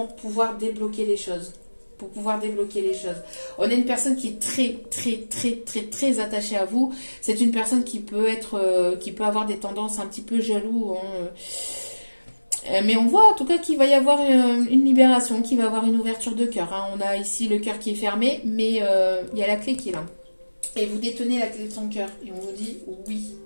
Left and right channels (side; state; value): both; inverted; correlation -1.00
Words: pouvoir débloquer les choses. Pour pouvoir débloquer les choses. On a une personne qui est très, très, très, très, très attachée à vous. C'est une personne qui peut avoir des tendances un petit peu jaloux. Mais on voit en tout cas qu'il va y avoir une libération, qu'il va y avoir une ouverture de cœur. Hein. On a ici le cœur qui est fermé, mais il y a la clé qui est là. Et vous détenez la clé de son cœur. Et on vous dit oui.